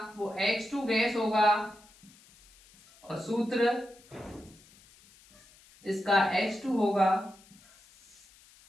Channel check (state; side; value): noise; left; hiss, 26 dB below the sound